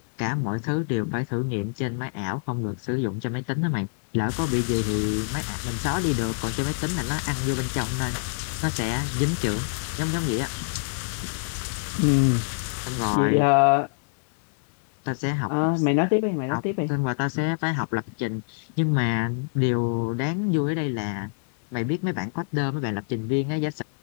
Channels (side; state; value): right; silent; digital silence